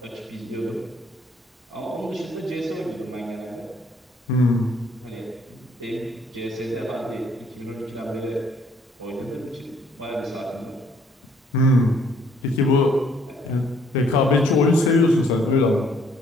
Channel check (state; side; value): normal; both; correlation 0.64